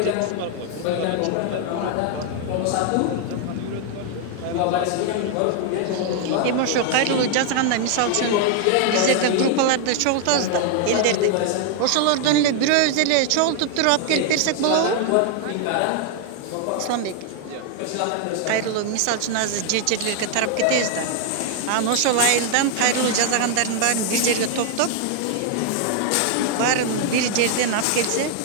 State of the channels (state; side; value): different; both; correlation 0.00